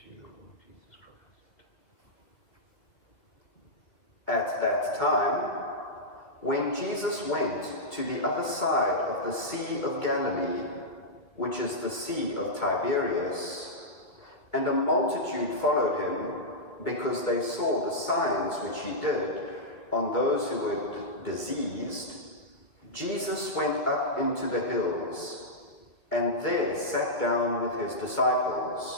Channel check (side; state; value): right; late; 2.0 ms